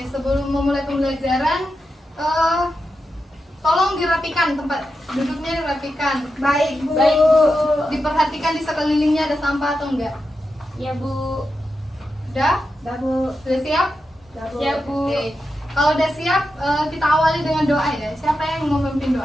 sebelum memulai pembelajaran, tolong dirapikan tempat duduknya, dirapikan. Baik Bu. Baik, Bu. Diperhatikan di sekelilingnya ada sampah atau enggak. Ya, Bu. Udah? Dah Bu. Sudah siap? Dah Bu. Siap, Bu. Oke. Kalau udah siap, kita awali dengan doa ya. Siapa yang mau memimpin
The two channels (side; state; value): both; normal; correlation 0.89